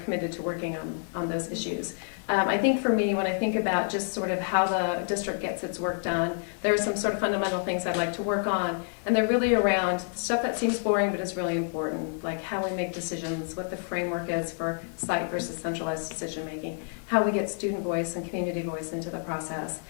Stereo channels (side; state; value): right; silent; 59 dB below the other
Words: committed to working on those issues. I think for me, when I think about just sort of how the district gets its work done, there are some sort of fundamental things I'd like to work on. And they're really around stuff that seems boring but is really important, like how we make decisions, what the framework is for site versus centralized decision making, how we get student voice and community voice into the process,